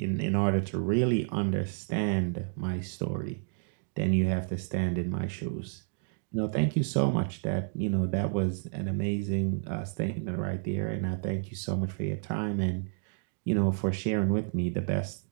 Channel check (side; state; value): left; silent; digital silence